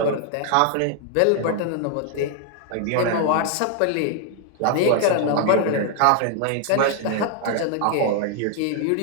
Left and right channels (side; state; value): both; different; correlation 0.00